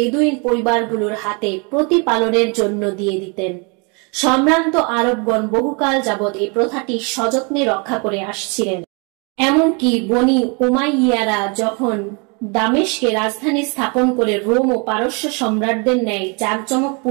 পরিবারগুলোর হাতে প্রতিপালনের জন্য দিয়ে দিতেন। সম্ভ্রান্ত আরবগণ বহুকাল যাবৎ এই প্রথাটি সযত্নে রক্ষা করে আসছিলেন। এমনকি বনি উমাইয়ারা যখন দামেস্কে রাজধানী স্থাপন করে রোম ও পারস্য সম্রাটদের ন্যায়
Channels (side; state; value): left; quieter; 32.8 dB